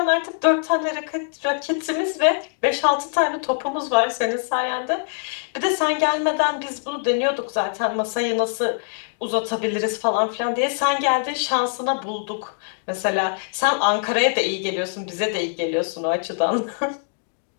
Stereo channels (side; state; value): right; silent; digital silence